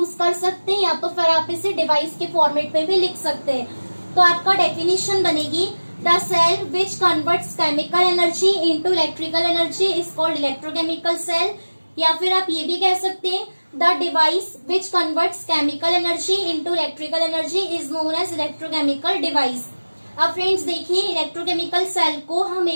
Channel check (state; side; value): inverted; both; correlation -1.00